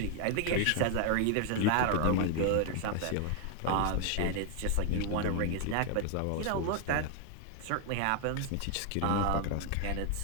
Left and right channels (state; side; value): different; both; correlation 0.00